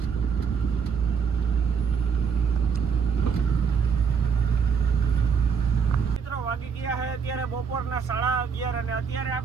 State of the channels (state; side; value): quieter; left; 6.4 dB